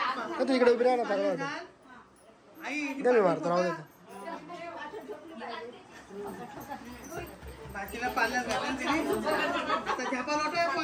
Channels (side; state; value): both; identical; correlation 1.00